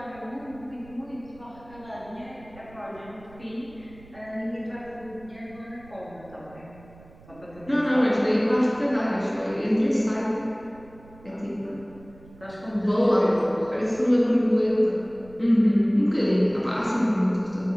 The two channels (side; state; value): right; noise; rumble, 23 dB below the sound